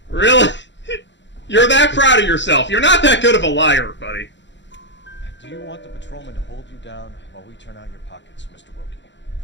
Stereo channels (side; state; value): right; late; 0.53 ms